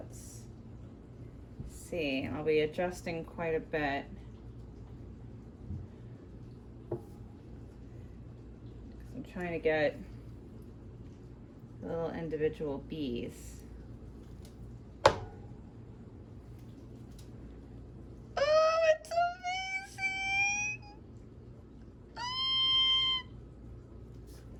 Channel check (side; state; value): both; identical; correlation 1.00